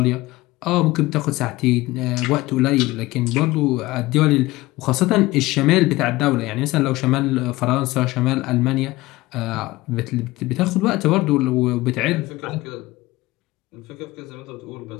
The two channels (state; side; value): quieter; right; 19.2 dB